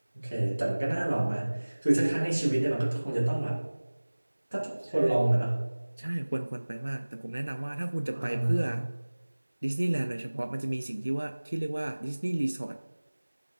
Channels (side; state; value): both; inverted; correlation -1.00